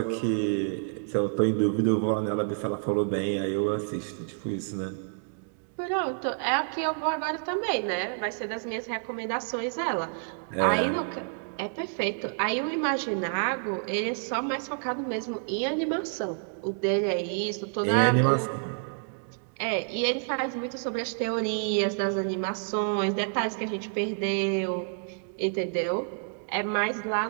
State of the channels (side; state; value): left; silent; digital silence